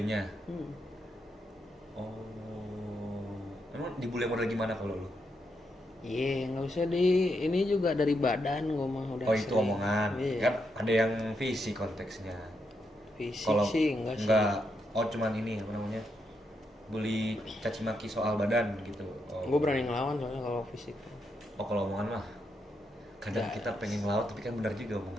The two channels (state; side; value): normal; both; correlation 0.81